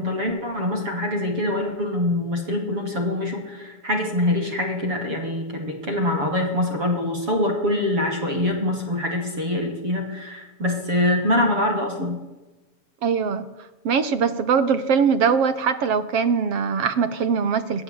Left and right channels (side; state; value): left; late; 7.1 ms